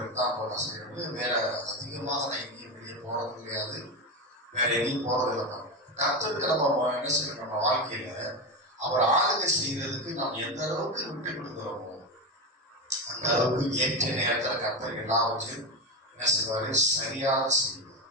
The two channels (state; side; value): normal; both; correlation 0.16